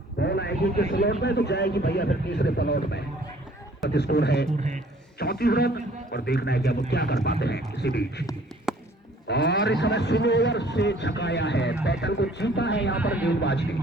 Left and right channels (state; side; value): normal; both; correlation 0.55